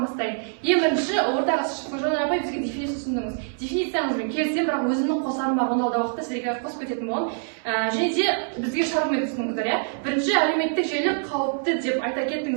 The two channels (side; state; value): left; silent; digital silence